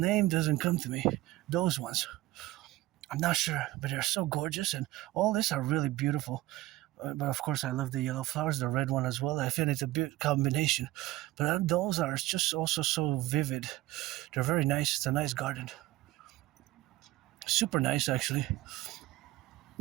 doesn't come to me. Those ones. I'm not sure, but they're so gorgeous, and all these are really beautiful. But of course, I love the yellow flowers, the red one as well. I feel it's a good combination. But those are just also so vivid. They're very nice. It's a nice garden. Super nice, actually.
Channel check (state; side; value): quieter; left; 17.2 dB